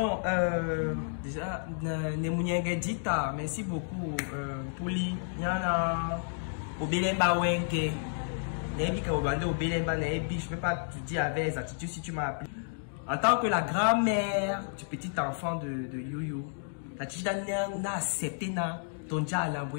déjà, Nemunyangedita, merci beaucoup. Pouli, Yana, Obelemba Wenke, Nebika Obande Obelemba Nebi, je peux pas te dire avec les attitudes si tu m'as appelé. En tant que la grand-mère du petit enfant de Yoyo, la Tchida n'a accepté ton dia à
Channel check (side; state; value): right; silent; digital silence